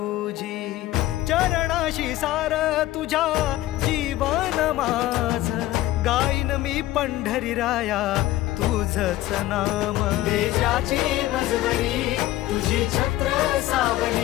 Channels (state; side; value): quieter; right; 15.7 dB